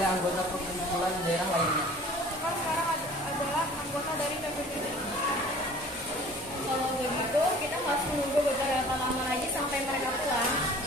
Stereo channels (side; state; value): both; normal; correlation 0.47